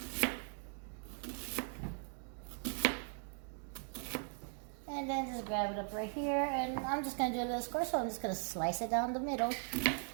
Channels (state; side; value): silent; left; 52 dB below the other